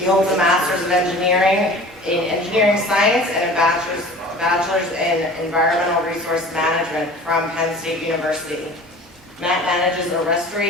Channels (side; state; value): both; normal; correlation 0.42